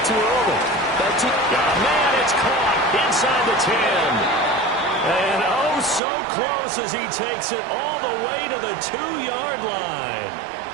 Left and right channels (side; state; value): left; drops out; at 6.0 s